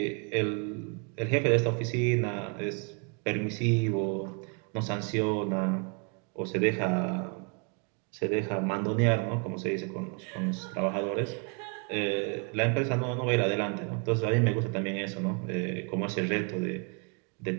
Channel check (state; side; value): quieter; left; 35.9 dB